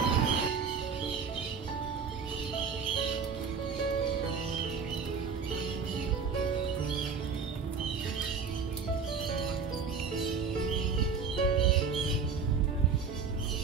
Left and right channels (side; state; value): left; quieter; 5.7 dB